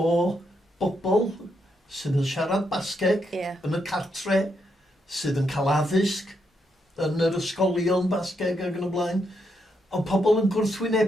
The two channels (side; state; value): both; normal; correlation 0.79